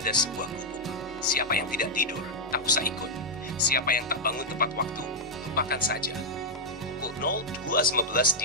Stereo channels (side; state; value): both; normal; correlation -0.04